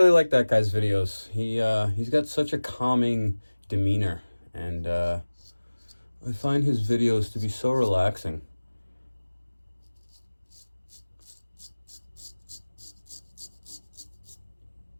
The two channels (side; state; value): both; inverted; correlation -1.00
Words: like that guy's videos. He's got such a calming demeanor, and I find his videos to be so relaxing.